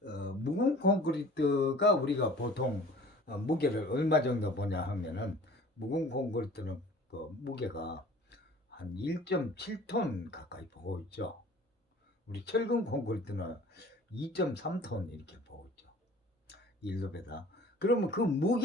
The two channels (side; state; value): both; normal; correlation 0.47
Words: 콘크리트가 우리가 보통 무게를 얼마 정도 보냐 하면은 묵은 콘크리트는 그 무게가 한 1.7톤 가까이 보고 있죠. 우리 철근 콘크리트는 2.3톤 이렇게 보고 있죠. 1롭에다. 그러면 그